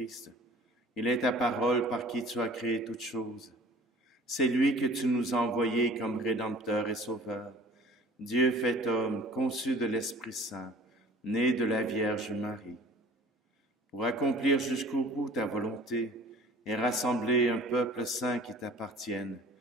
il est ta parole par qui tu as créé toutes choses. C'est lui que tu nous as envoyé comme Rédempteur et Sauveur, Dieu fait homme, conçu de l'Esprit Saint, né de la Vierge Marie. Pour accomplir jusqu'au bout ta volonté et rassembler un peuple saint qui t'appartienne,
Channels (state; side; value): normal; both; correlation 0.47